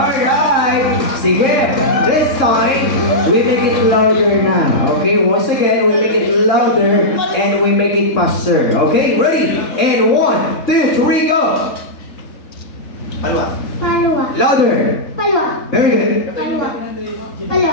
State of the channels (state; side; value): late; right; 3.7 ms